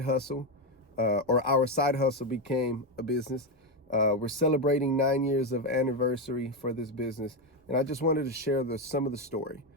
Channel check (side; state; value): both; normal; correlation 0.09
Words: hustle, or our side hustle, became a business. We're celebrating 9 years of anniversary for this business, and I just wanted to share some of the story